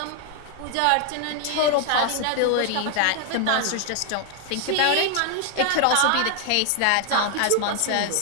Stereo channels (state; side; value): different; both; correlation 0.00